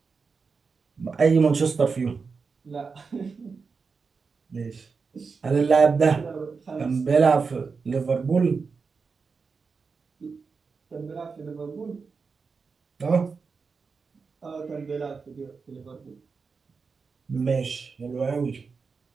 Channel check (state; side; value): quieter; left; 5.0 dB